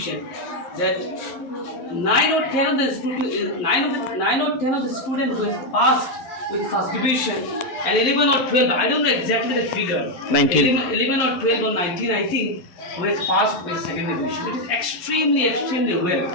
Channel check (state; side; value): late; right; 12 ms